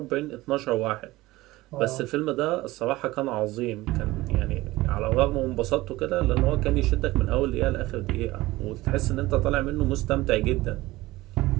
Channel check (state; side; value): quieter; left; 18.7 dB